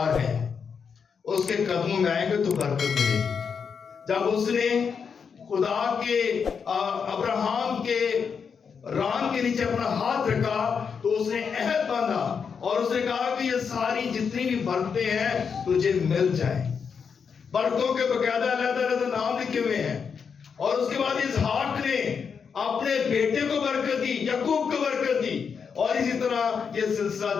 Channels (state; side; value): quieter; right; 6.3 dB